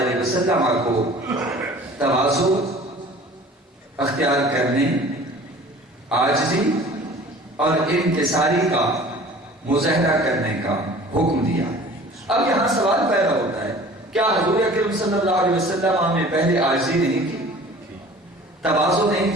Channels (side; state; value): both; normal; correlation 0.45